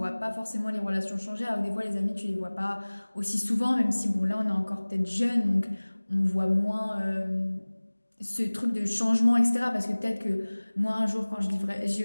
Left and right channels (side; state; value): both; inverted; correlation -1.00